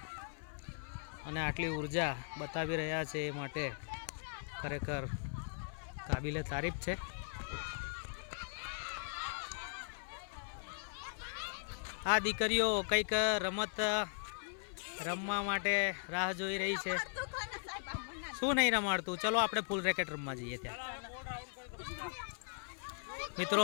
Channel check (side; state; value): right; silent; 52 dB below the other